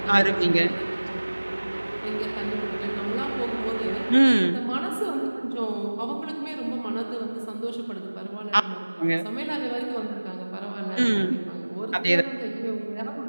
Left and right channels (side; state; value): both; inverted; correlation -1.00